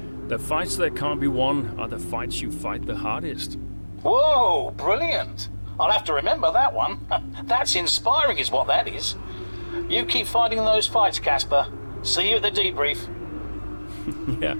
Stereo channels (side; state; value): both; inverted; correlation -1.00